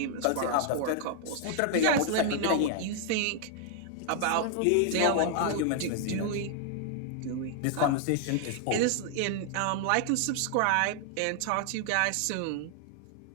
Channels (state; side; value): different; both; correlation 0.00